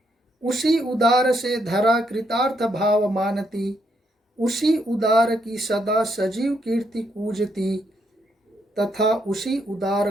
उसी उदार से धरा कृतार्थ भाव मानती, उसी उदार की सदा सजीव कीर्ति पूजती, तथा उसी उदार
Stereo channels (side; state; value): both; normal; correlation 0.75